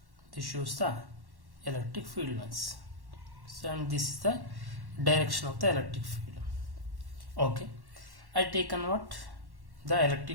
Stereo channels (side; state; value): left; late; 1.1 ms